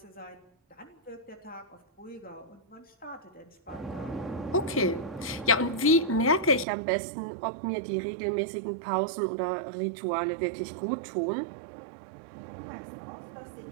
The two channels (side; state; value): left; drops out; at 6.7 s